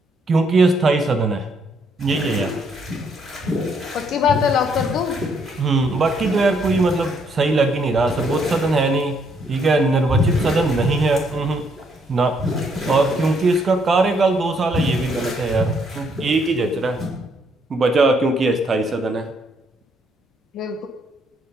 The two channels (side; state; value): both; normal; correlation 0.71